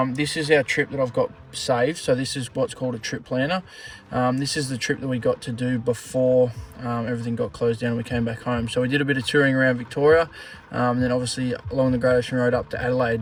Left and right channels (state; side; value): identical; both; correlation 1.00